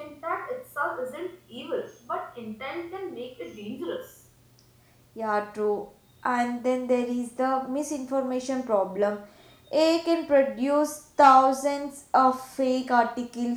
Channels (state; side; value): identical; both; correlation 1.00